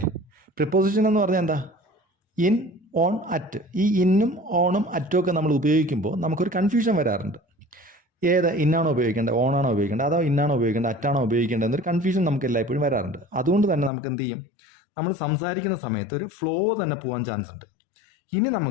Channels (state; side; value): drops out; right; at 13.9 s